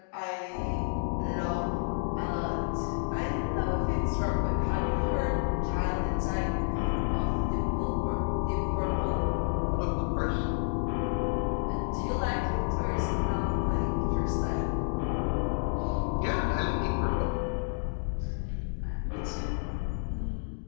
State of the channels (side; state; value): right; silent; digital silence